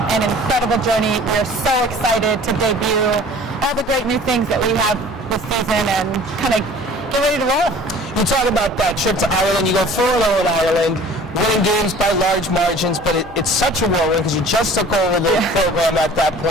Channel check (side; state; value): left; noise; hum, 25 dB below the sound